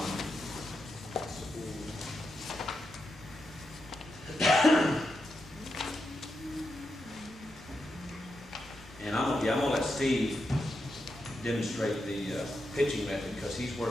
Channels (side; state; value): both; normal; correlation 0.86